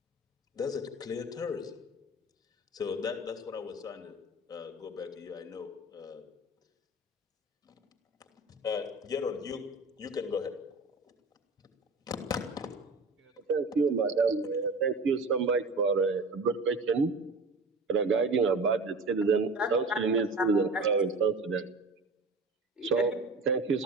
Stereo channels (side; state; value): left; quieter; 3.1 dB